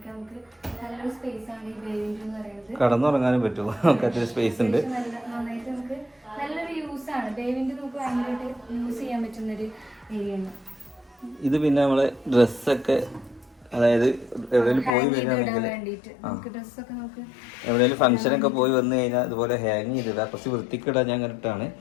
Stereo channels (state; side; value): drops out; right; at 14.9 s